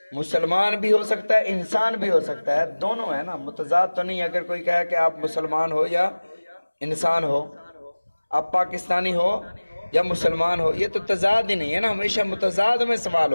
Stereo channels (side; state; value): both; inverted; correlation -1.00